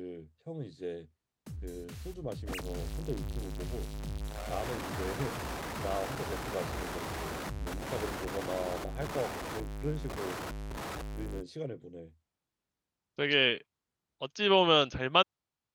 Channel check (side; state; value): both; identical; correlation 1.00